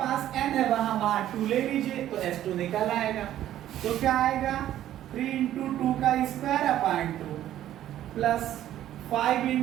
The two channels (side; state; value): left; quieter; 12.4 dB